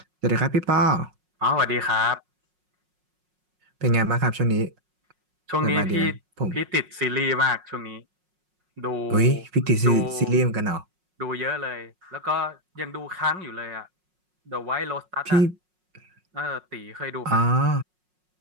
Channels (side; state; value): left; late; 5.5 ms